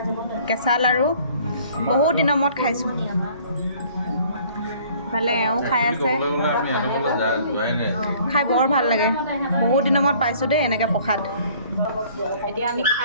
কেঁচা লাড়ু বহুত দিনৰ মূৰত খাইছোঁ ভালে এওঁ খাই আছে খাই বৰ ভাল লাগে বহুত দিনৰ মূৰত পাইছোঁ দেই এনেকৈ প্ৰসাদ এতিয়া আমি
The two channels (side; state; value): both; inverted; correlation -0.55